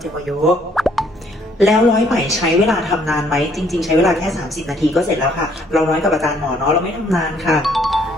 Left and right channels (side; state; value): both; normal; correlation 0.64